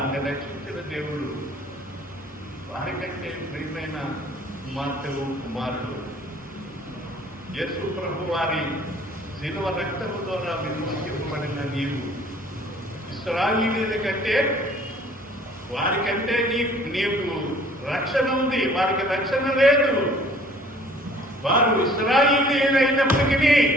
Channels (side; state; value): both; normal; correlation 0.54